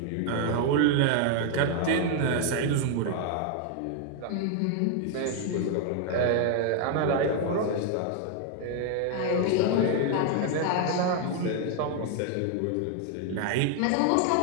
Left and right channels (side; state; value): both; different; correlation 0.00